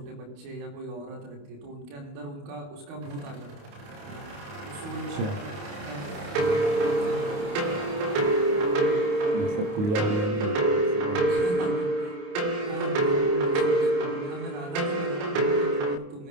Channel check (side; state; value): left; late; 28 ms